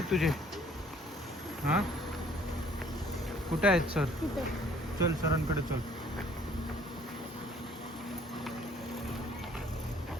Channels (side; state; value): both; normal; correlation 0.58